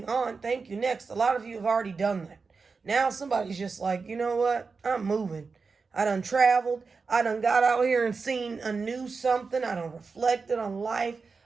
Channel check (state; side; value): quieter; left; 4.7 dB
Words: on. Thank you. Next. A lot of you have already done that. Now somebody's just like, you know what? I'm moving. I done traveled. I done got out here and seen a new something. I done reflected on life.